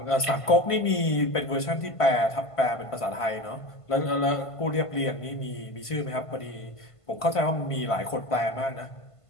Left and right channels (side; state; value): right; late; 1.5 ms